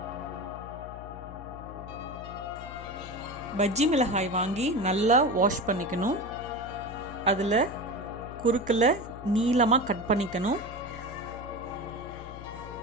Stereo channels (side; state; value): left; noise; hum, 13 dB below the sound